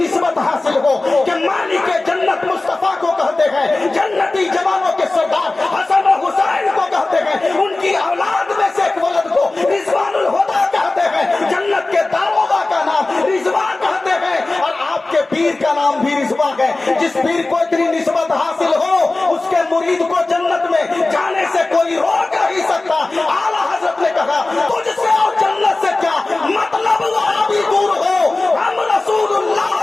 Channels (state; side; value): quieter; right; 3.1 dB